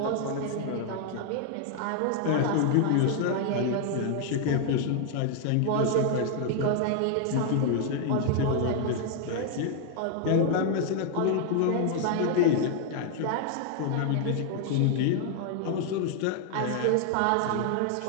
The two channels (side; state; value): both; different; correlation 0.00